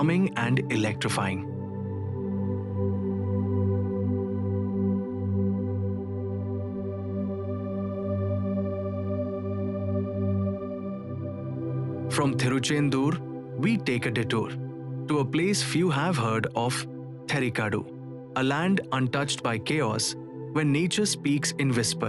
and electrifying. From Tiruchendur, we take a detour to a place few have heard of, Theri Kadu, a land untouched by chaos where nature speaks in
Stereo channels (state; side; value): identical; both; correlation 1.00